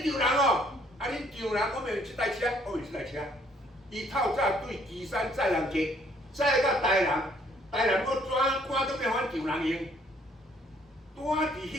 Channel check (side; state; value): both; normal; correlation 0.64